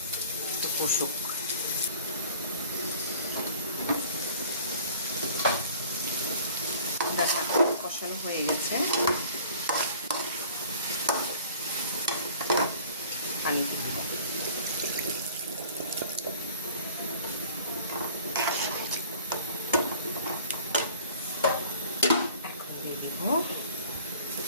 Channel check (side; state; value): both; inverted; correlation -0.48